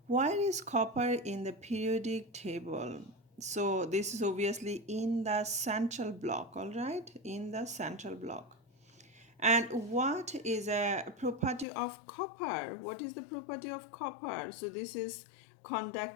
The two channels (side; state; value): right; drops out; at 11.7 s